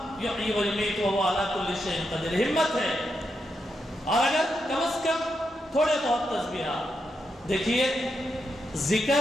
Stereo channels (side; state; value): both; normal; correlation 0.84